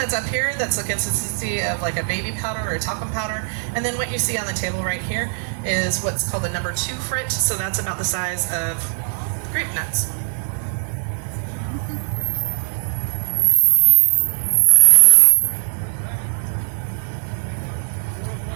up here that's the consistency of like a baby powder or a talcum powder, and then what you see on the table right here is what's called the number 2 frit, so that's about the size of grape nuts.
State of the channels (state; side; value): silent; left; digital silence